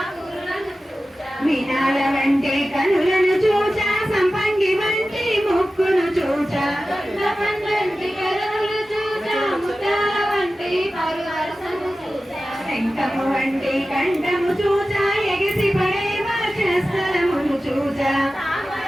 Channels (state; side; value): normal; both; correlation 0.95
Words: చూచా వినాల వంటి కనులను చూచా సంపంగి వంటి ముక్కును చూచా పండంటి కనులు చూచా ముత్యాల వంటి పరువరసను చూచా శంఖము వంటి కంఠము చూచా ఎగిసి పడే వర్షస్థలమును చూచా